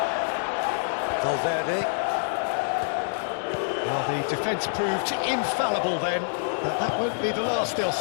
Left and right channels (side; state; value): right; silent; digital silence